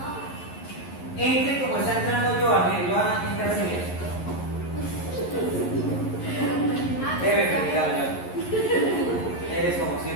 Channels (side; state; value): right; late; 11 ms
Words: Entre como está entrando Joana. Joana, entra así mismo. Debe felicitarlo, Joana. Eres como